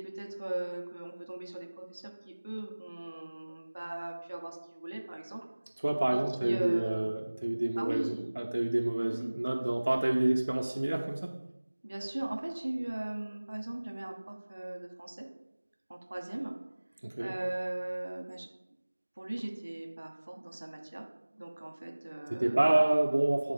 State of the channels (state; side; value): inverted; both; correlation -1.00